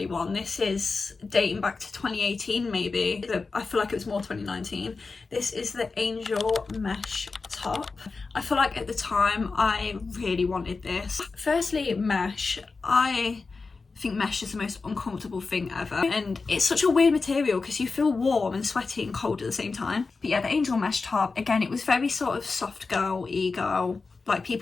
one. This is dating back to 2018 maybe. I feel like it was more 2019. This is the Angel mesh top. I feel like at the time I really wanted this. Firstly, mesh. I think mesh is the most uncomfortable thing ever, and it's such a weird material because you feel warm and sweaty and cold at the same time. But yeah, the Angel mesh top, again, it was very sort of soft girl, e-girl. Like,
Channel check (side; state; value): right; quieter; 4.2 dB